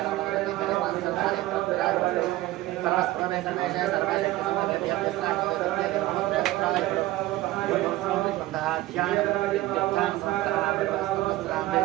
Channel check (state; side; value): quieter; left; 16.9 dB